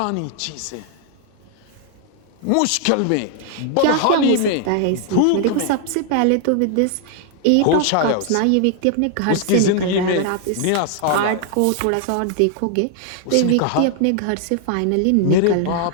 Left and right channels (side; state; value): both; different; correlation 0.00